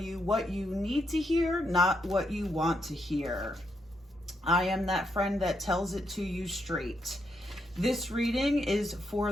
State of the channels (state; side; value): normal; both; correlation 0.79